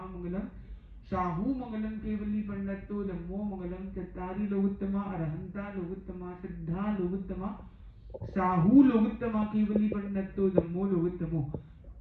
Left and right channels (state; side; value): identical; both; correlation 1.00